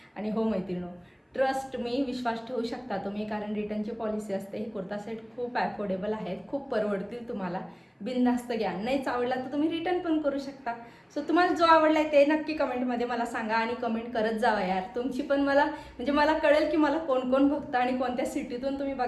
आणि हो मैत्रिणो, ट्रस्ट मी, विश्वास ठेवू शकता तुम्ही, कारण रिटर्नची पॉलिसी असते. हे कुर्ता सेट खूप अफोर्डेबल आहेत, खूप परवडतील तुम्हाला. बिनधास्त घ्या, नाहीच आवडला तर तुम्ही रिटर्न पण करू शकता. सो तुम्हाला जो आवडला आहे ते नक्की कमेंटमध्ये मला सांगा आणि कमेंट करत जावा यार. तुमची पण मला म्हणजे मला कळेल की मला कोण कोण बघता आणि कोणत्या सिटीतून तुम्ही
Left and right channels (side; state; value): both; identical; correlation 1.00